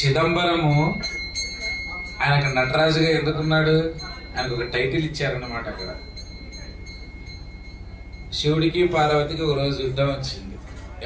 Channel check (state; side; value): identical; both; correlation 1.00